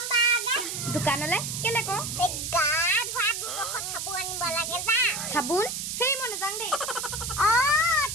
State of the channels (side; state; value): right; noise; hiss, 4 dB below the sound